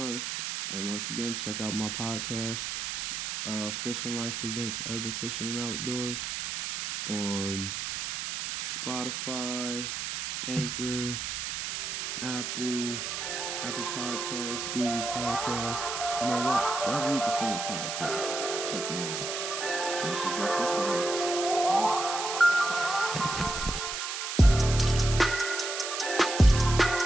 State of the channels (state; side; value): noise; right; hiss, 4 dB below the sound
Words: And once again, check out my podcast, Fishing Life Presents Urban Fishing and Outdoors, on Spotify, Anchor, Apple Podcasts, Google Podcasts. You know what? Wherever you can find a podcast, check me out. This is my Fishing Life.